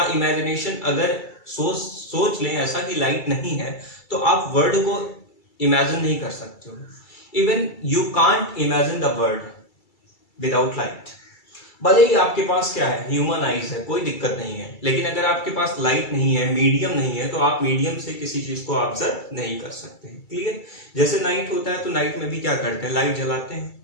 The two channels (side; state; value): right; late; 2.3 ms